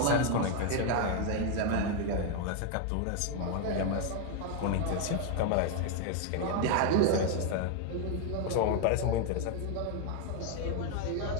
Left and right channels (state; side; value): different; both; correlation 0.01